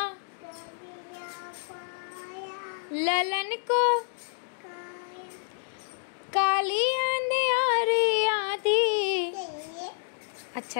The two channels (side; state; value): right; silent; digital silence